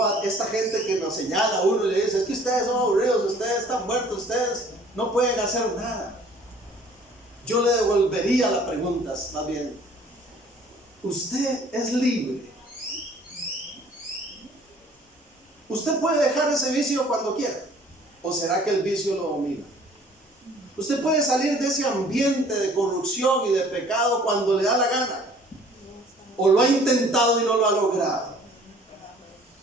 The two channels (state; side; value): normal; both; correlation 0.54